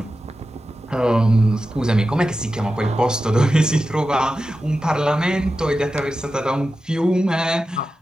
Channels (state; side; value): normal; both; correlation 0.92